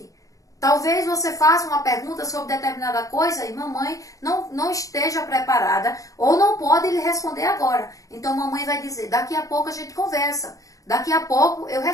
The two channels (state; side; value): late; right; 0.16 ms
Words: Talvez você faça uma pergunta sobre determinada coisa e mamãe não esteja preparada ou não pode lhe responder agora. Então mamãe vai dizer, daqui a pouco a gente conversa, daqui a pouco eu